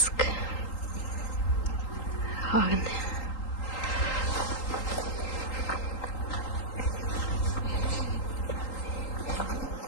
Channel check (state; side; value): late; right; 3.8 ms